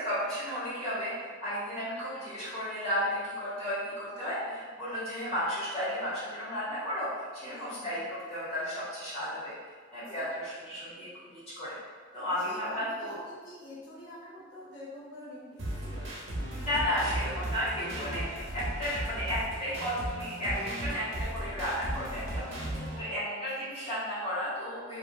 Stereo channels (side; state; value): both; normal; correlation 0.13